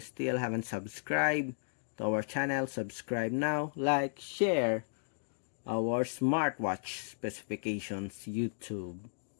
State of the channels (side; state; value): right; silent; digital silence